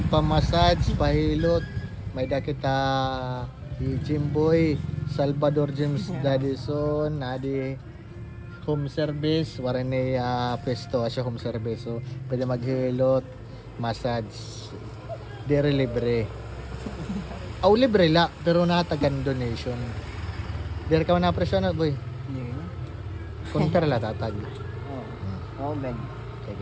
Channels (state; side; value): identical; both; correlation 1.00